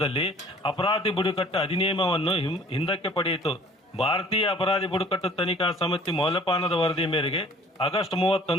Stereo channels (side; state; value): both; normal; correlation 0.52